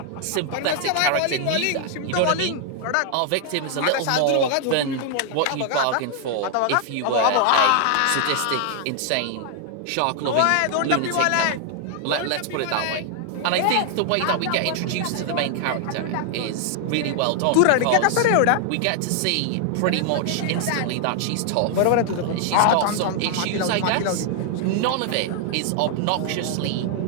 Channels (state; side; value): different; both; correlation 0.00